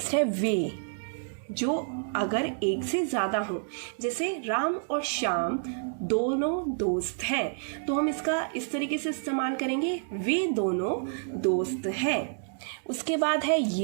है वे, जो अगर एक से ज़्यादा हो, जैसे राम और श्याम दोनों दोस्त हैं, तो हम इसका इस तरीके से इस्तेमाल करेंगे, वे दोनों दोस्त हैं। उसके बाद है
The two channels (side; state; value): left; silent; digital silence